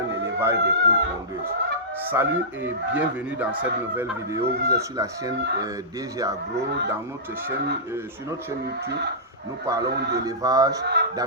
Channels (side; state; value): both; normal; correlation -0.17